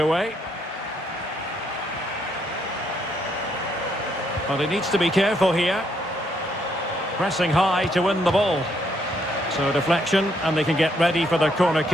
But he needs to be careful here. Pressing high to win the ball. So deflection, and they can get ready for their corner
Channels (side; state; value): both; normal; correlation 0.73